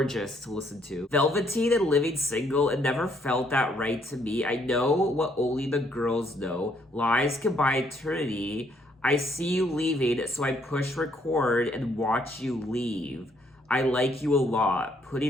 to listen to. Velveteen and Living Single, it never felt that right to me. I know what only the girls know. Lies can buy eternity. I see you leaving, so I push record and watch you leave. I like you a lot.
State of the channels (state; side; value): normal; both; correlation 0.69